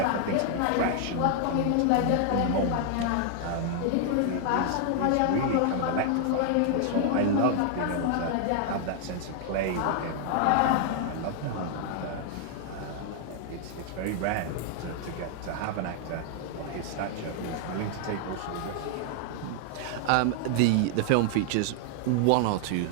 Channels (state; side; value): different; both; correlation 0.00